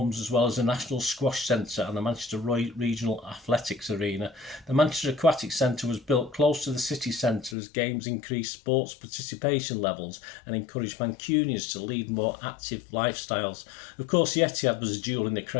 as well as the National Squash Centre and the Manchester Regional Athletics Arena. The Manchester Aquatic Centre was built close to the city centre as games increased sports participation levels and encouraged Mancunians to lead more active lifestyles. Of course, the Etihad was a jewel in the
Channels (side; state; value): right; drops out; at 7.6 s